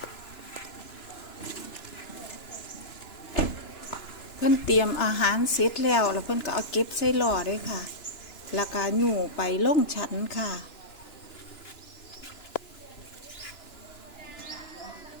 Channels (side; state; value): right; late; 2.9 ms